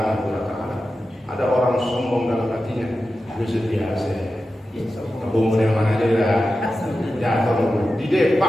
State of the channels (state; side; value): normal; both; correlation 0.92